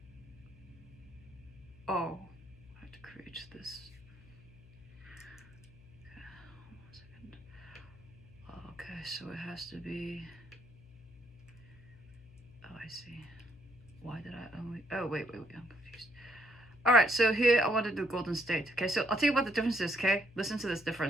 Oh, I have to create this. Okay, 1 second. Okay, so it has to be. Oh, I see. Why did I only? Oh, wait, I'm confused. All right, so here I want to do Golden State. Okay, so I'll tell you what the difference is. Okay, listen to this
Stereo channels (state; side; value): noise; left; hum, 22 dB below the sound